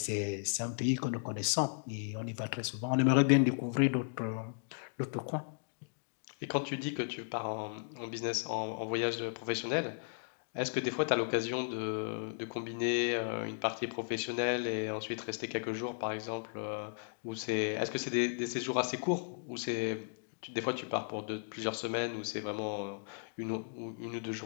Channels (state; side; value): silent; right; digital silence